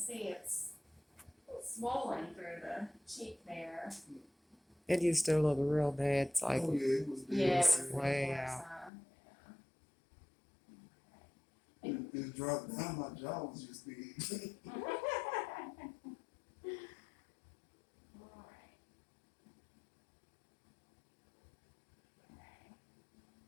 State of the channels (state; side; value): drops out; right; at 8.9 s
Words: it's swollen through the cheek there. It used to look real bad. It's like, Oh yeah, it was big. Yeah, it was way worse, out. It dropped down. My jaw was just big.